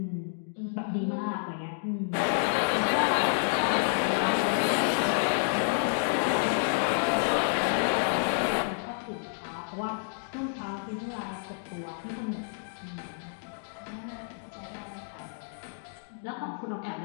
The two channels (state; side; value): silent; right; digital silence